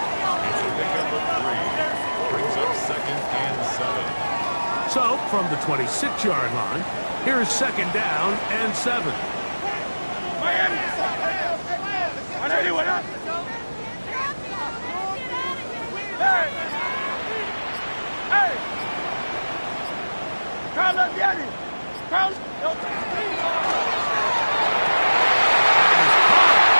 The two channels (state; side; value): inverted; both; correlation -1.00